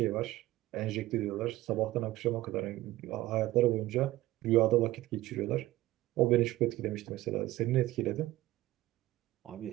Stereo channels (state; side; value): quieter; left; 16.7 dB